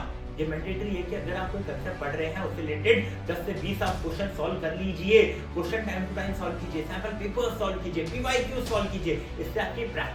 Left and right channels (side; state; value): both; identical; correlation 1.00